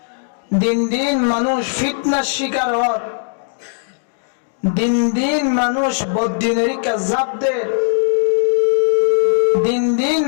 দিন দিন মানুষ ফিতনার শিকার হর, দিন দিন মানুষ বদ্দিনেরিকা জাবদের, দিন দিন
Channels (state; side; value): silent; right; digital silence